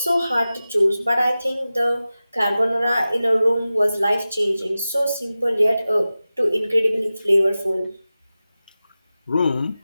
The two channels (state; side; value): inverted; both; correlation -0.95